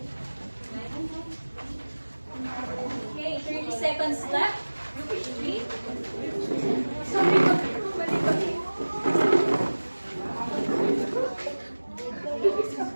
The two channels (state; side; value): inverted; both; correlation -1.00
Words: Okay, 30 seconds left. Group 3.